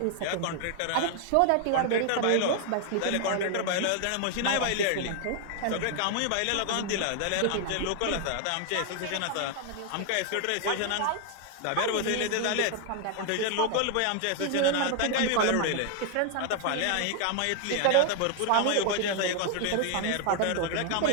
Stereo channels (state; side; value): different; both; correlation 0.00